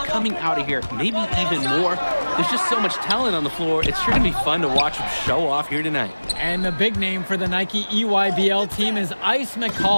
coming out of here, maybe even more. There's just so much talent on the floor. It's sure to be fun to watch them show off here tonight. And the big name for the Nike EYBL team is Ice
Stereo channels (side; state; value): both; inverted; correlation -1.00